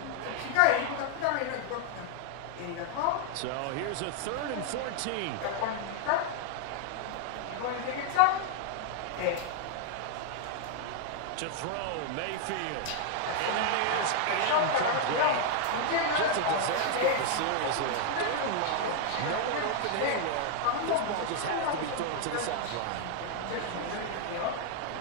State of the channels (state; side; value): different; both; correlation 0.00